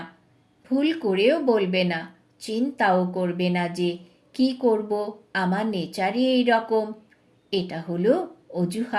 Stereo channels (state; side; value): identical; both; correlation 1.00